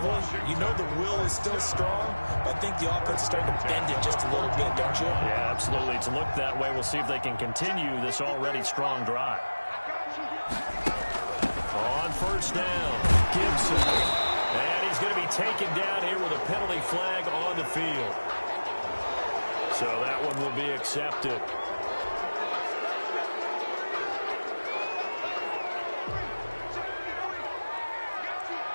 You know the will is still strong, but I think the offense is starting to bend it just a little bit, don't you? Yeah, absolutely. It's looked that way. We'll see if they can continue this already strong drive. On first down, Gibson. And he's going to be taken down here with a penalty flag on the field. So that one will be accepted.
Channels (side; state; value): both; inverted; correlation -1.00